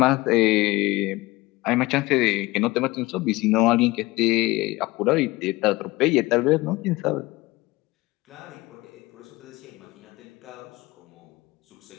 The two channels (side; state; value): right; quieter; 20.7 dB